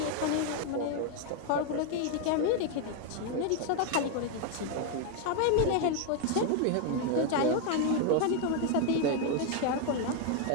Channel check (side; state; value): both; different; correlation 0.01